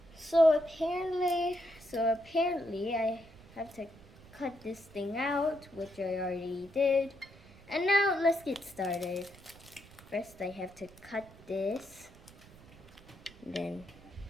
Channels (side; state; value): right; noise; rumble, 22 dB below the sound